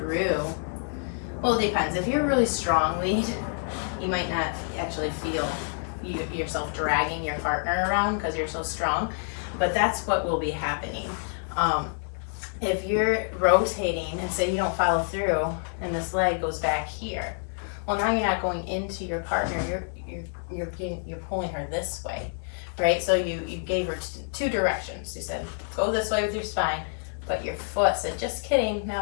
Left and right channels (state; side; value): silent; right; 60 dB below the other